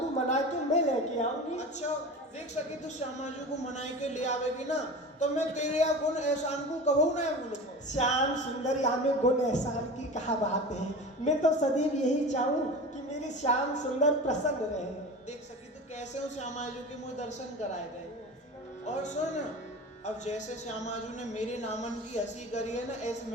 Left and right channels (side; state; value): both; normal; correlation 0.32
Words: मना के मैं लेके आऊंगी। अच्छा देख सकी तो श्यामाजू को मनाई के ले आवेगी ना, तो मैं तेरे या गुण एहसान को कबू ना भूलूंगा। श्याम सुंदर, यहाँ में गुण एहसान की कहा बात है। मैं तो सदैव यही चाहूँ कि मेरे श्याम सुंदर प्रसन्न रहे। देख सकी तो कैसे हो श्यामाजू के मुझे दर्शन कराए गए। और सुन, अब जैसे श्यामाजू ने मेरे नामन की हंसी करी है ना, ऐसे